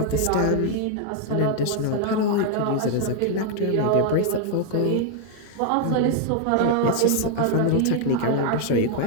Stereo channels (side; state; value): both; different; correlation 0.00